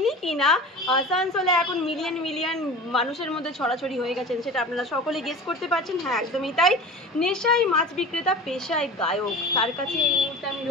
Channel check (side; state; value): both; normal; correlation 0.36